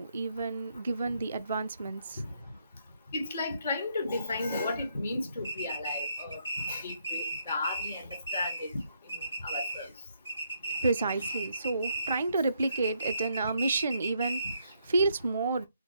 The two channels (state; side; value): inverted; both; correlation -0.74